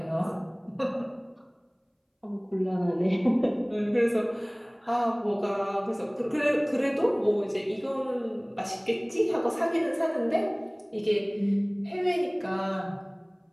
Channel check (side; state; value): both; identical; correlation 1.00